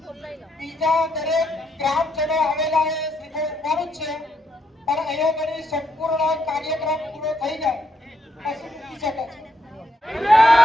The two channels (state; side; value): normal; both; correlation 0.76